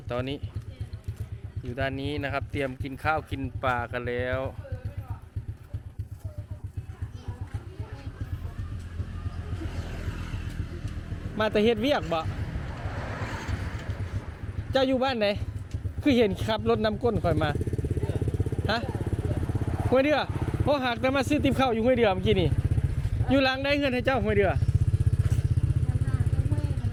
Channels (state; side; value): identical; both; correlation 1.00